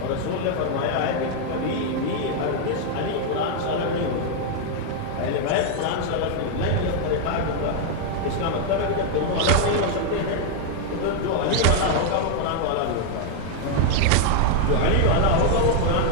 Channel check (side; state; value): both; different; correlation 0.00